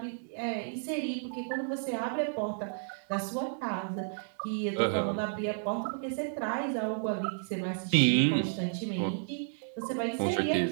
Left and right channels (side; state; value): left; silent; digital silence